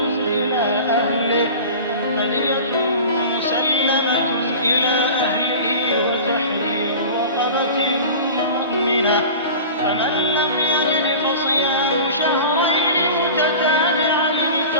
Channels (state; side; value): inverted; both; correlation -0.36